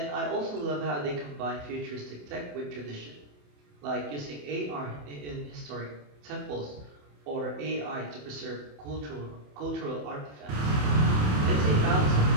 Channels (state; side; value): late; left; 27 ms